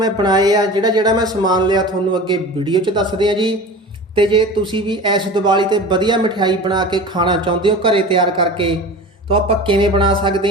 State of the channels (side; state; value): both; normal; correlation 0.35